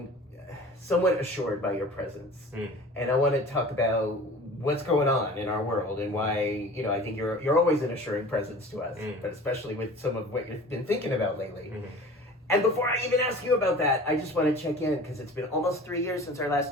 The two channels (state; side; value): normal; both; correlation 0.42